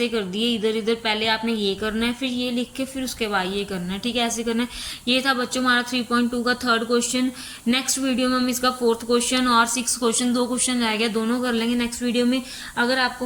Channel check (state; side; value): identical; both; correlation 1.00